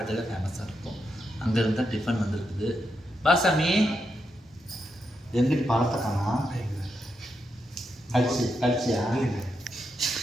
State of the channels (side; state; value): both; normal; correlation 0.84